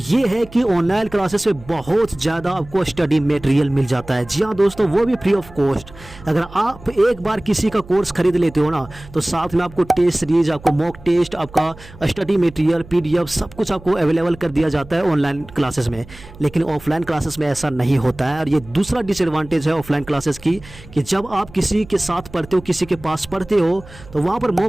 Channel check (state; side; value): noise; right; hum, 20 dB below the sound